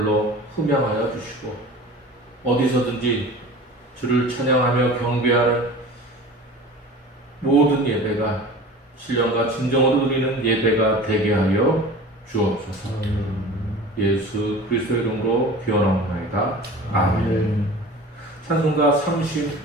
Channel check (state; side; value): normal; both; correlation 0.38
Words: 흠양하여 주시고 어디서든지 주를 찬양하며 경배하는 모든 예배가 신령과 진정으로 드리는 예배가 되게 하여 주옵소서. 예수 그리스도의 이름으로 기원하옵나이다. 아멘. 찬송가